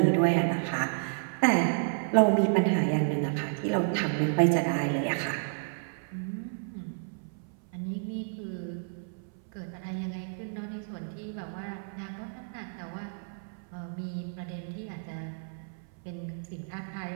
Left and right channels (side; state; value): left; silent; 57 dB below the other